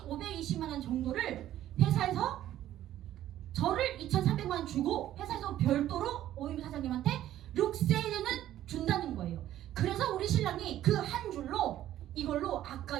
원 정도를 회사에서 저를 2,300만 원 주고 회사에서 별도로 오임비 사장님한테 6세대는 준다는 거예요. 그래서 우리 신랑이 그 한 줄로 이걸로 아까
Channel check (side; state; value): left; quieter; 12.7 dB